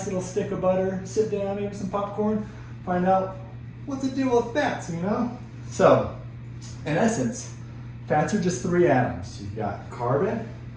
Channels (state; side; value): identical; both; correlation 1.00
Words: little stick of butter, sit down, maybe some popcorn, find out what's the deal with fats, you know? So, in essence, fats are just three atoms. You've got carbon,